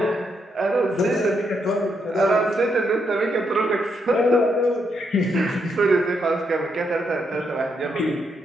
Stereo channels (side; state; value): both; normal; correlation 0.78